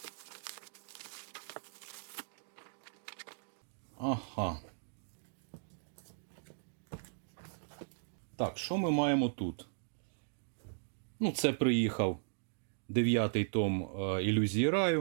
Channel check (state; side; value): silent; left; digital silence